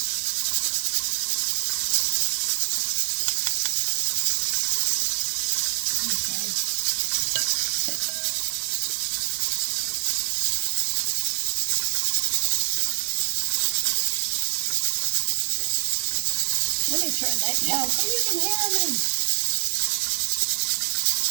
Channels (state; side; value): silent; left; digital silence